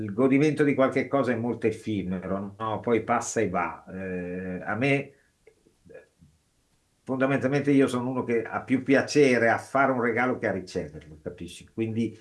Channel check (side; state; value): both; identical; correlation 1.00